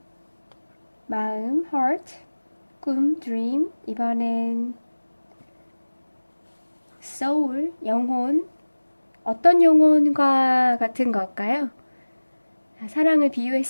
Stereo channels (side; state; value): both; inverted; correlation -1.00